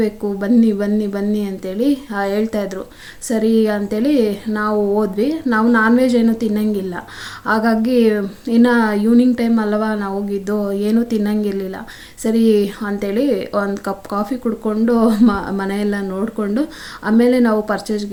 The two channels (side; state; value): both; identical; correlation 1.00